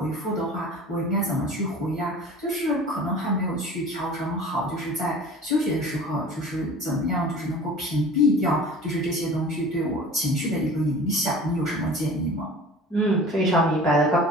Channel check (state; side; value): normal; both; correlation 0.42